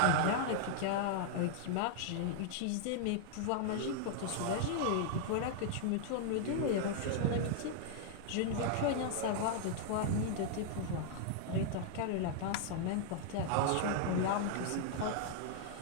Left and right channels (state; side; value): different; both; correlation -0.01